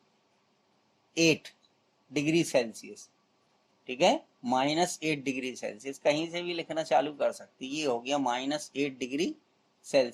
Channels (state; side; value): identical; both; correlation 1.00